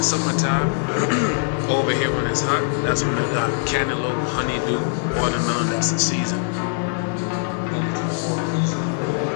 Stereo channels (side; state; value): right; silent; 64 dB below the other